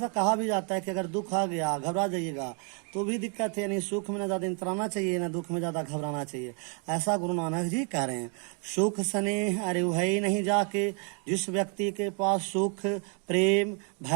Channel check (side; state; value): left; quieter; 39.2 dB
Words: कहा भी जाता है कि अगर दुख आ गया घबरा जाइएगा तो भी दिक्कत है, यानी सुख में न ज़्यादा इतराना चाहिए न दुख में ज़्यादा घबराना चाहिए, ऐसा गुरु नानक जी कह रहे हैं। सुख स्नेह अरे वही नहीं जाके, जिस व्यक्ति के पास सुख प्रेम